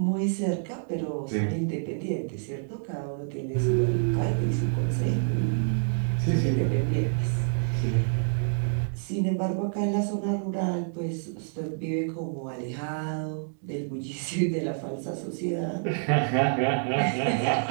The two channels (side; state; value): left; silent; digital silence